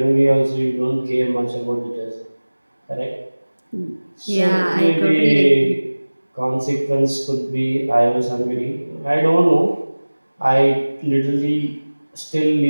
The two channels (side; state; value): both; inverted; correlation -1.00